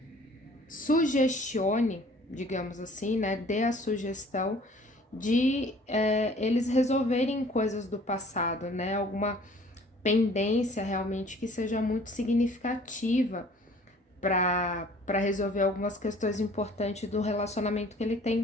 sugestione, digamos assim, né? Dê a sugestão de eles resolverem coisas do passado, né? Alguma pendência realmente que seja muito significativa para resolver algumas questões importantes do relacionamento que ele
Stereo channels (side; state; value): both; normal; correlation 0.53